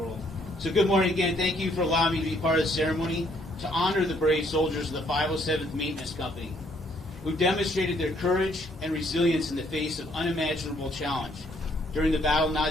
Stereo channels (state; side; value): normal; both; correlation 0.67